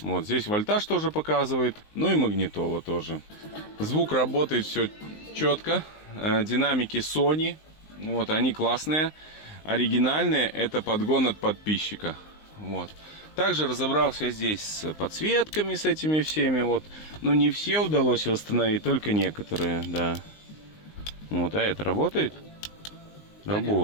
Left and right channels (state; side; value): late; right; 19 ms